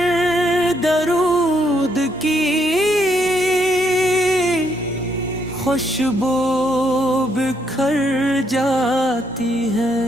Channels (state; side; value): normal; both; correlation 0.74